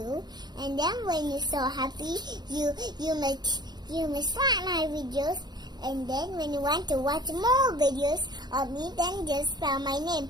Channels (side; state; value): left; late; 0.20 ms